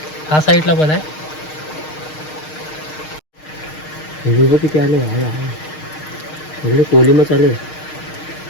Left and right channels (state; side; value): late; right; 6.5 ms